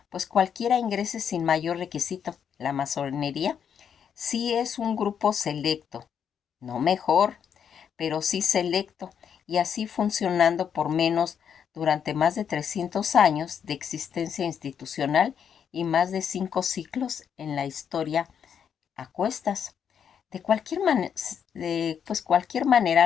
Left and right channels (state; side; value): quieter; right; 7.9 dB